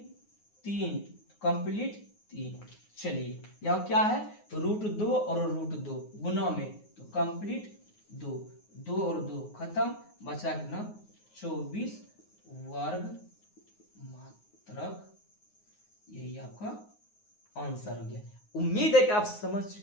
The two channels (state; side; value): late; right; 9.5 ms